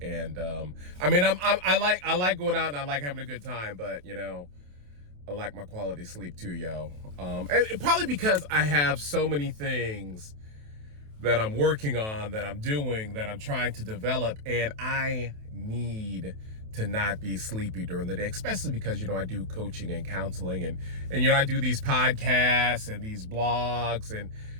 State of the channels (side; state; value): left; late; 28 ms